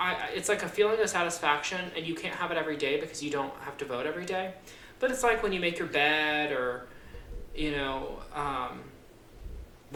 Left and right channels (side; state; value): both; identical; correlation 1.00